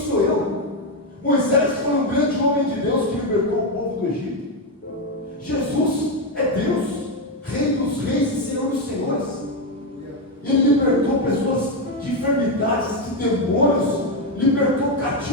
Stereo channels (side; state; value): both; normal; correlation 0.07